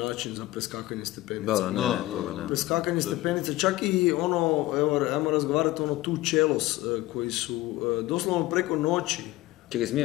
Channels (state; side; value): quieter; right; 17.7 dB